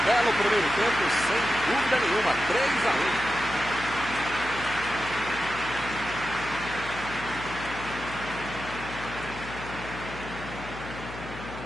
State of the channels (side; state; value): left; noise; hum, 12 dB below the sound